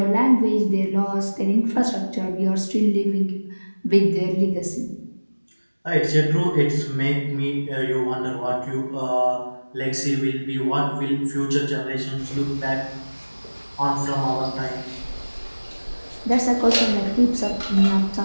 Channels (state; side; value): inverted; both; correlation -1.00